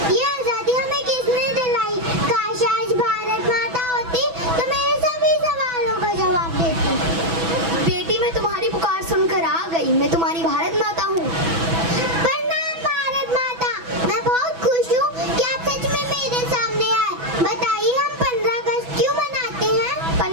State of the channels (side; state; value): left; late; 6.1 ms